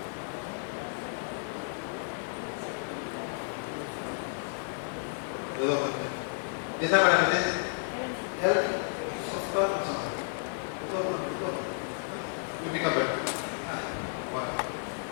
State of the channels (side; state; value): right; silent; 56 dB below the other